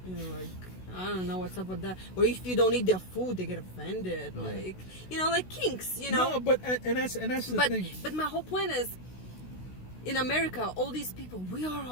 Like, I don't know what's up with that. Or if you don't eat their food, they get offended. Like, like kinks, No, but and that's the thing. But my whole point is, in America, all these people, we are all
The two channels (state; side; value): late; right; 16 ms